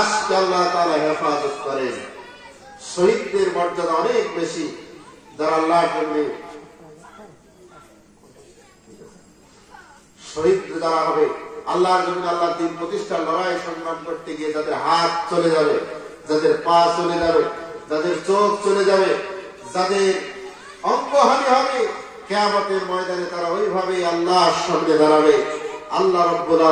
আল্লাহ তাআলা হেফাজত করেন। শহীদদের মর্যাদা অনেক বেশি, যারা আল্লাহর জন্য শহীদ যারা হবে, আল্লাহর জন্য আল্লাহর দ্বীন প্রতিষ্ঠার লড়াই সংগ্রাম করতে গিয়ে যাদের হাত চলে যাবে, যাদের পা চলে যাবে, যাদের চোখ চলে যাবে, যাদের অঙ্গহানি হবে, কিয়ামতের ময়দানে তারা ওইভাবে আল্লাহর সামনে দাঁড়াবে। আল্লাহ রাব্বুল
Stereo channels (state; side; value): identical; both; correlation 1.00